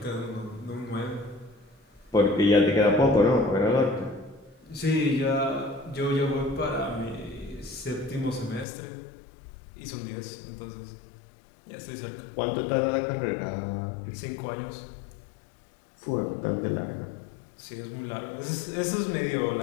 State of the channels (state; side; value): drops out; right; at 8.7 s